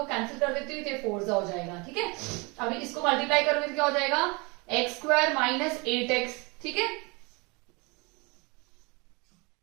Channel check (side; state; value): left; quieter; 28.3 dB